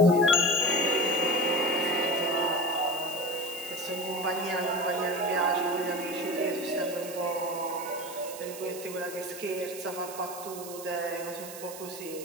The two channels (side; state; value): right; noise; hiss, 13 dB below the sound